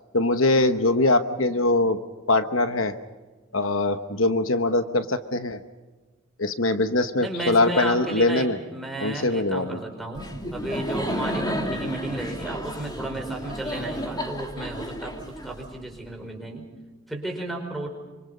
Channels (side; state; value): both; normal; correlation -0.13